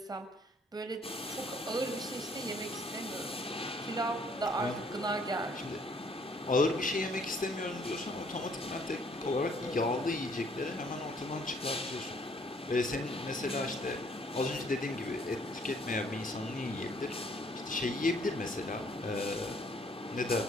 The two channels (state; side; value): normal; both; correlation 0.63